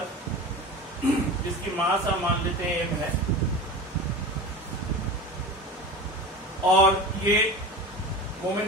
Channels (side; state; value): both; normal; correlation 0.31